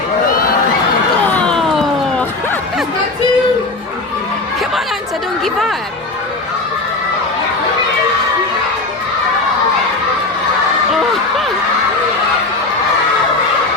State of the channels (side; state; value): right; quieter; 3.2 dB